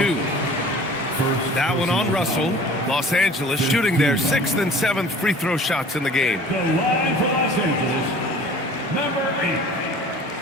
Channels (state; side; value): normal; both; correlation 0.46